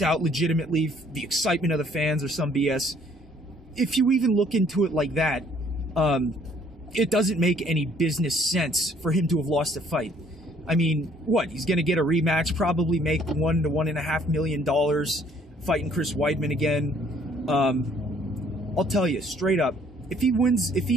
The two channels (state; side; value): normal; both; correlation 0.61